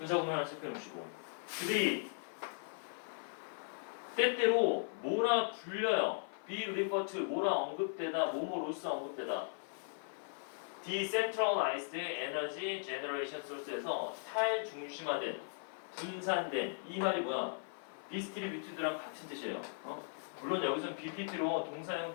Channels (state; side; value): silent; right; 52 dB below the other